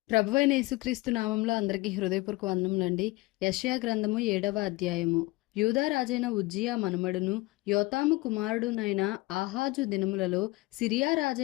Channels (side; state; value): right; quieter; 21.9 dB